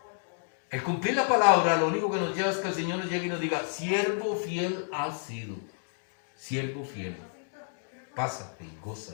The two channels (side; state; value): right; silent; digital silence